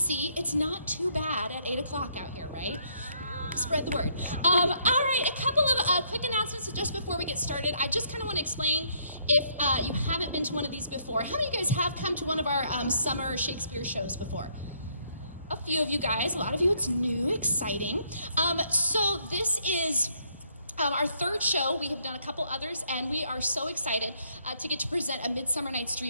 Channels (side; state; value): both; inverted; correlation -0.69